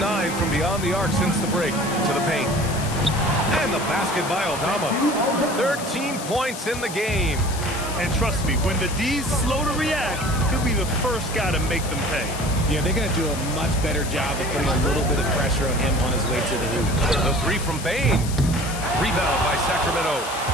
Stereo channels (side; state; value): left; noise; hiss, 10 dB below the sound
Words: from beyond the arc since the break. To the paint. And the basket by Aldama. 13 points in the game. And trust me, when the D's slow to react, he'll be the first guy to make them pay. Yeah, they're going to do a much better job of putting a little bit of pressure on him on his way to the hoop. The 3 from Bain. Rebound by Sacramento.